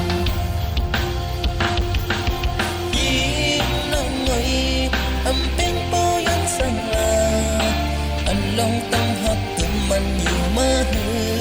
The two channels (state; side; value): identical; both; correlation 1.00